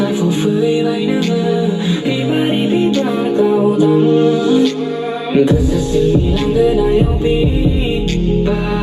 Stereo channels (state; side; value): identical; both; correlation 1.00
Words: phô phơi bày ngang vì ba đi vì ba đã cao tăng kesesingilan yang